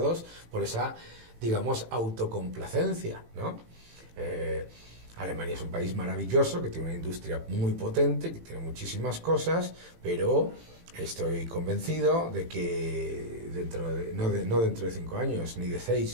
por esa, digamos, autocomplacencia, ¿no? Alemania es un país maravilloso, que tiene una industria muy potente, que tiene muchísimas cosas, pero estoy convencido de que no dentro de 5 años, ni de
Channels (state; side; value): late; left; 18 ms